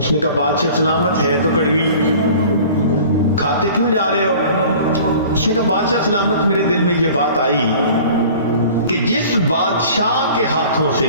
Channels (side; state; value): both; inverted; correlation -0.45